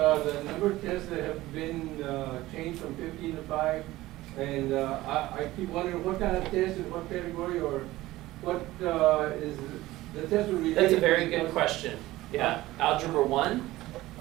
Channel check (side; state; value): left; quieter; 17.4 dB